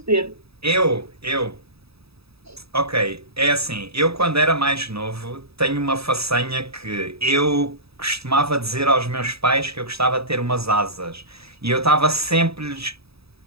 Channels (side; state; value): left; late; 0.77 ms